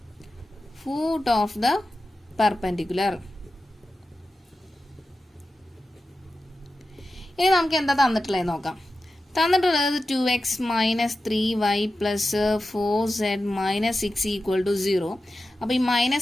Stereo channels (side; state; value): both; normal; correlation 0.93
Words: ഫൂട്ട് ഓഫ് ദ പെർപെൻഡിക്കുലർ. ഇനി നമുക്ക് എന്താ തന്നിട്ടുള്ളത് നോക്കാം. തന്നിട്ടുള്ളത് 2x minus 3y plus 4z minus 6 equal to 0. അപ്പോൾ ഈ